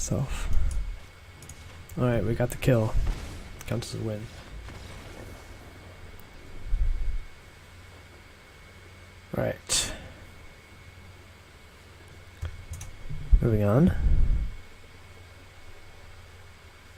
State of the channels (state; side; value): identical; both; correlation 1.00